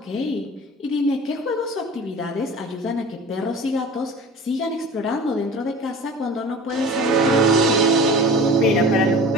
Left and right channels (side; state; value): both; normal; correlation 0.39